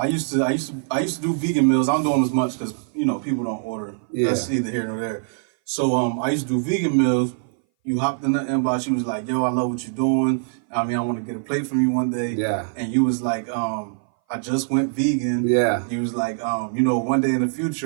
used to do vegan meals. I don't do them as much because people don't order. Yeah. That's either here nor there. So I used to do vegan meals. You hopped in the inbox. You was like, "Yo, I love what you're doing. I want to get a plate from you one day." Yeah. And you was like, I just went vegan. Yeah. You was like, one day in the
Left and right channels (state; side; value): silent; left; 59 dB below the other